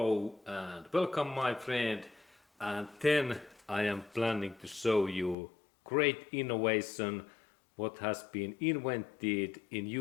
and welcome my friend, and then I am planning to show you great innovation what has been invented in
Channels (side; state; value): right; drops out; at 5.4 s